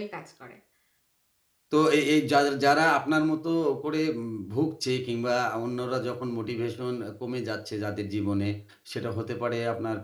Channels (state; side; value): identical; both; correlation 1.00